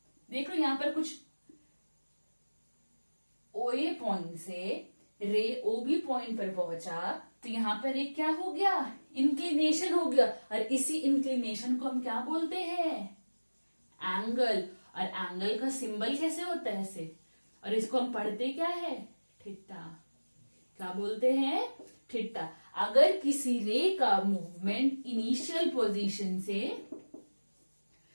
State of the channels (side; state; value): both; inverted; correlation -1.00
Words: देखो यहां पर कुछ ओए पॉइंट से रे ओबी पॉइंट पर पहुंचा तो यहां पर एक क्या हो गया? इंक्लिनेशन हो गया। और इसी इंक्लिनेशन को हम क्या बोलते हैं? एंगल। और एंगल का सिंबल कैसे होता है? ऐसे। और इसको हम पढ़ते क्या है? थीटा। क्या बोलते हैं? थीटा। अगर किसी रे का मूवमेंट इनिशियल पोजीशन से